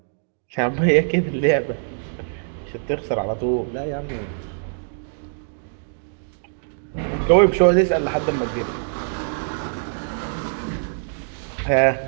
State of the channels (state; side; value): silent; left; digital silence